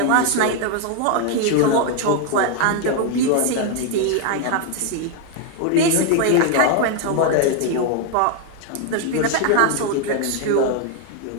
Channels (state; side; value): different; both; correlation 0.01